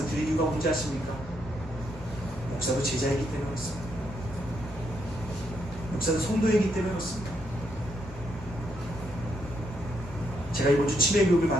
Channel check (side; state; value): both; normal; correlation 0.77